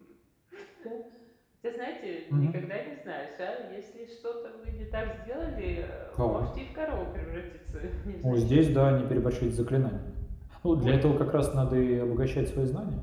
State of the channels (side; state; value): both; identical; correlation 1.00